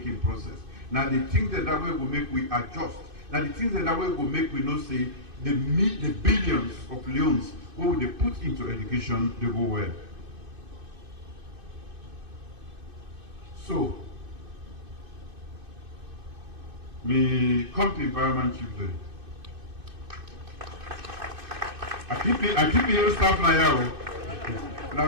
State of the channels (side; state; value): left; late; 2.6 ms